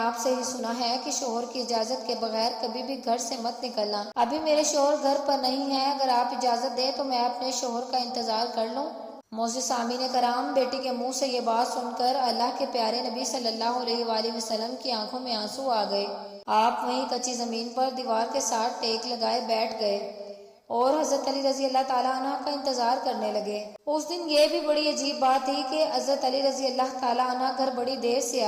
سے ہی سنا ہے کہ شوہر کی اجازت کے بغیر کبھی بھی گھر سے مت نکلنا۔ ابھی میرے شوہر گھر پر نہیں ہیں، اگر آپ اجازت دیں تو میں اپنے شوہر کا انتظار کر لوں۔ معزز سامعین کرام، بیٹی کے منہ سے یہ بات سن کر اللہ کے پیارے نبی صلی اللہ علیہ وآلہ وسلم کی آنکھوں میں آنسو آ گئے۔ آپ وہیں کچی زمین پر دیوار کے ساتھ ٹیک لگائے بیٹھ گئے اور حضرت علی رضی اللہ تعالیٰ عنہ کا انتظار کرنے لگے۔ اس دن یہ بھی بڑی عجیب بات تھی کہ حضرت علی رضی اللہ تعالیٰ عنہ گھر بڑی دیر سے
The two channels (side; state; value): both; identical; correlation 1.00